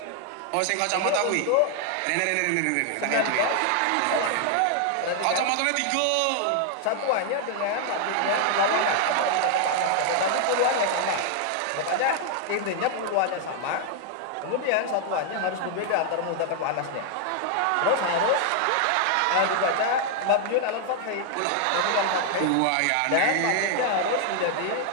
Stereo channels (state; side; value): different; both; correlation 0.00